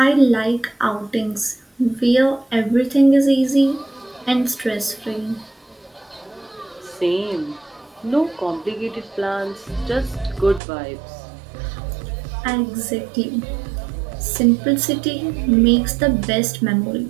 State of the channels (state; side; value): drops out; left; at 10.6 s